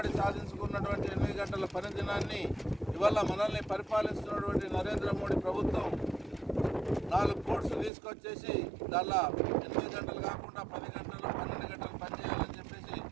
సాధించుకున్నటువంటి 8 గంటల పని దినాన్ని ఇవాళ మనల్ని పరిపాలిస్తున్నటువంటి నరేంద్ర మోడీ ప్రభుత్వం 4 కోడ్స్ తీసుకొచ్చేసి దానిలో 8 గంటలు కాకుండా 10 గంటలు 12 గంటలు పనిచేయాలని చెప్పేసి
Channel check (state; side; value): drops out; left; at 7.9 s